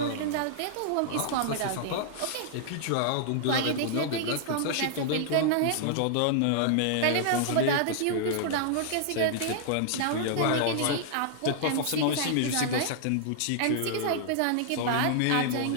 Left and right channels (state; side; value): different; both; correlation -0.01